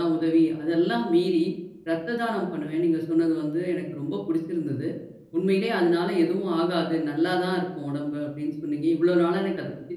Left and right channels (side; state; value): both; identical; correlation 1.00